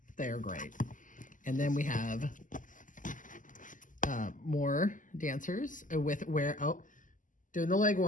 They're great. And then we have more dancers with doing the leg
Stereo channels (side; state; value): right; late; 0.38 ms